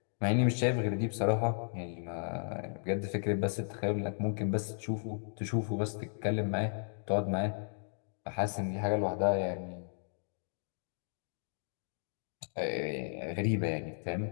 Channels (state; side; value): silent; right; digital silence